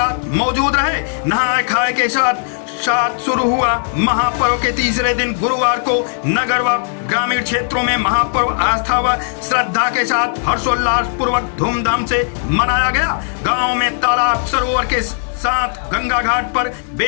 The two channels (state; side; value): silent; right; digital silence